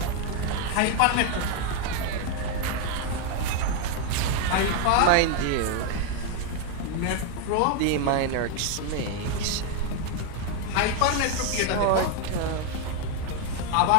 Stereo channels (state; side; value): different; both; correlation 0.01